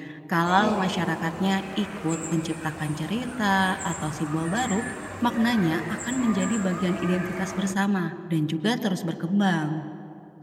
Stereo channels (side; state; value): both; identical; correlation 1.00